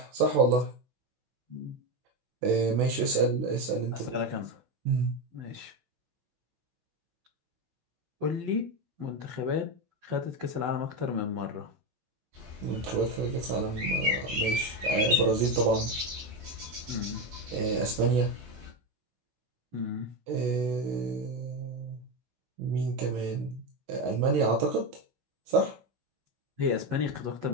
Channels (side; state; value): left; late; 16 ms